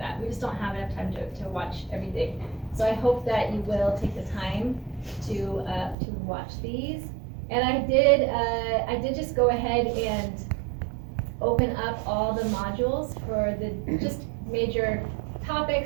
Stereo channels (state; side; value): drops out; left; at 6.0 s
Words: We just don't have enough time to watch everything. So I hope that you will take the time to watch these. And I did just go ahead and open up all the modules for the just major